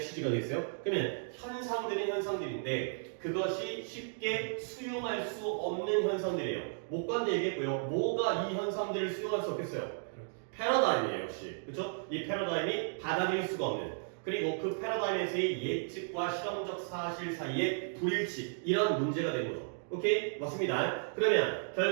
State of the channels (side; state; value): left; silent; digital silence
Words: 되겠어요. 그러면 현상들인데 그것이 쉽게 수용할 수 없는 현상들이에요. 목관대 얘기했고요. 뭐가 이 현상들을 수용할 수 없겠어요? 패러다임이에요, 역시. 그렇죠? 이 패러다임이 받아들일 수가 없는. 그리고 그 패러다임에서의 예측과 실험적 사실 사이의 불일치 이런 문제가 되는 거죠. 오케이? 맞습니다. 그러면